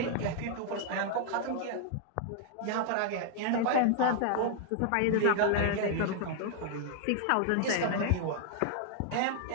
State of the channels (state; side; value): different; both; correlation 0.00